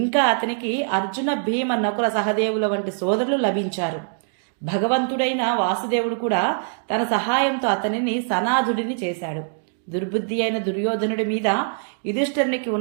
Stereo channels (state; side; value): silent; left; digital silence